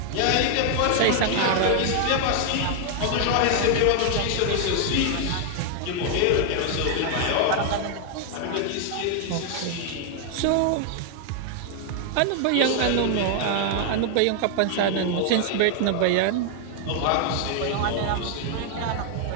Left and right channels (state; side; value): different; both; correlation 0.00